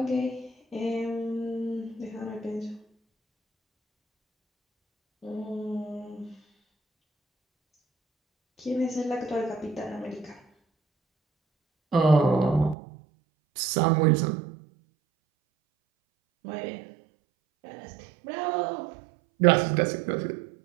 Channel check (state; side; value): drops out; left; at 12.8 s